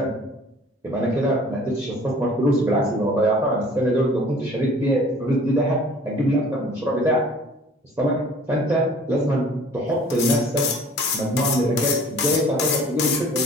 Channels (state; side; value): normal; both; correlation 0.50